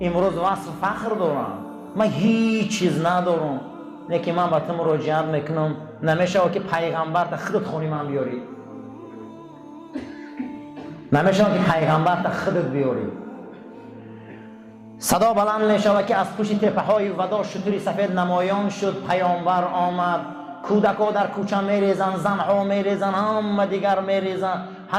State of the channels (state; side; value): identical; both; correlation 1.00